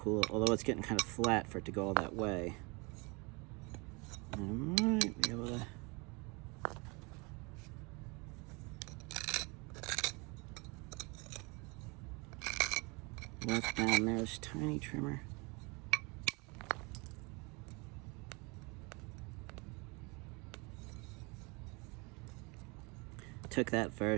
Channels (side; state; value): left; quieter; 28.8 dB